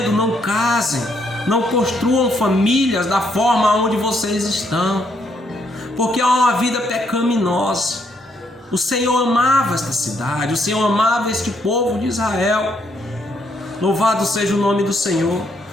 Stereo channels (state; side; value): normal; both; correlation 0.73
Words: não casem, não construam famílias da forma onde vocês estão, porque é uma vida pecaminosa. O Senhor amava esta cidade, o Senhor amava este povo de Israel. Louvado seja o nome do Senhor.